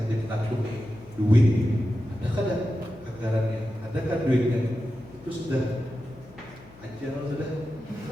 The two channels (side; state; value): left; noise; hum, 22 dB below the sound